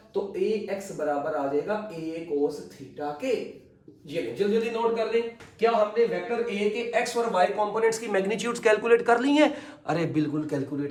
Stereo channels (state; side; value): identical; both; correlation 1.00